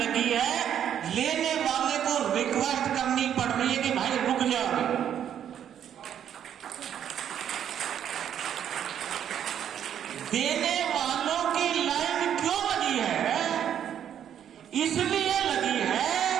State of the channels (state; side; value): quieter; left; 9.5 dB